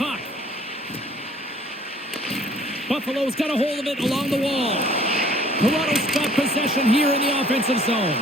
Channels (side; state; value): both; normal; correlation 0.55